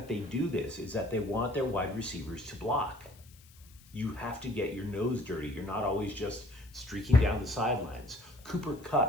they do this is that they want their wide receivers to block. You have to get your nose dirty. You're not always just streaking down the sidelines. Cooper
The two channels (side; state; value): left; noise; hiss, 25 dB below the sound